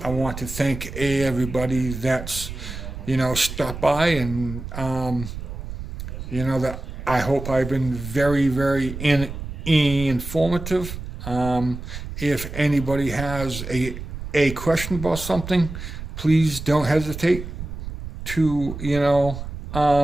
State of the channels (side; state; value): right; noise; rumble, 9 dB below the sound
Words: want to thank everybody that's, you know, stopped by, and you know, that I hope I've been very, very informative. If anybody has a question about something, please don't hesitate to, you know,